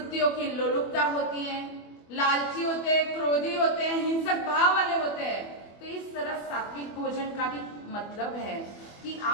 की लोलुपता होती है, लालची होते हैं, क्रोधी होते हैं, हिंसक भाव वाले होते हैं। तो इस तरह सात्विक भोजन का भी मतलब है कि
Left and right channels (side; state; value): right; late; 24 ms